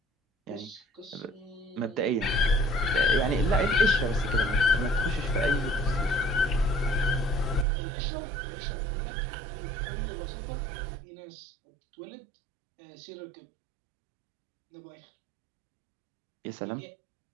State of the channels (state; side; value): drops out; left; at 7.7 s